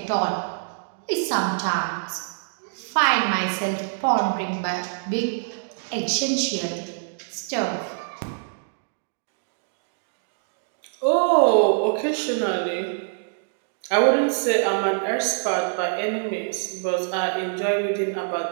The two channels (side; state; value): left; silent; digital silence